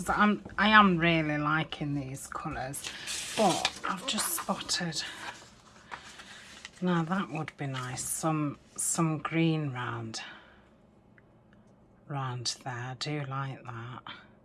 I am really liking these colours, but I've just spotted, now that would be nice, some green round there. I do like that.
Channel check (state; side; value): identical; both; correlation 1.00